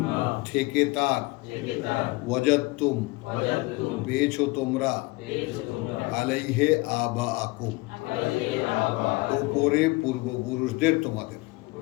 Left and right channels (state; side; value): quieter; right; 23.5 dB